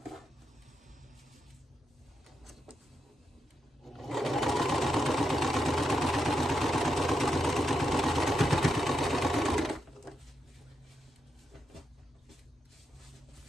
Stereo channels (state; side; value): normal; both; correlation 0.84